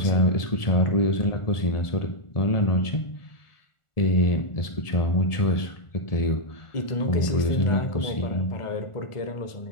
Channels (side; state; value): right; late; 1.4 ms